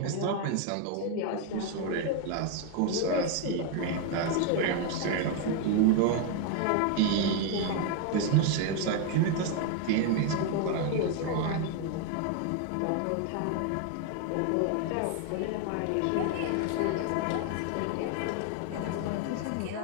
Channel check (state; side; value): different; both; correlation 0.01